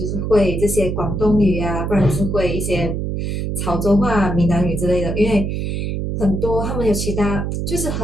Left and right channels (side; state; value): right; noise; hum, 2 dB below the sound